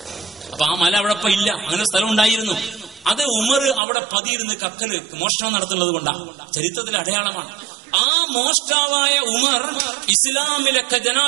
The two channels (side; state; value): left; drops out; at 3.8 s